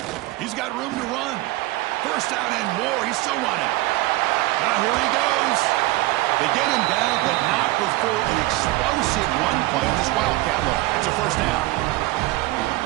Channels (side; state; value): left; quieter; 18.9 dB